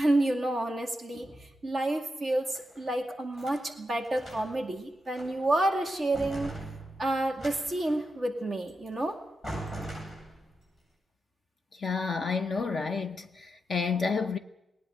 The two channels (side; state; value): both; normal; correlation 0.87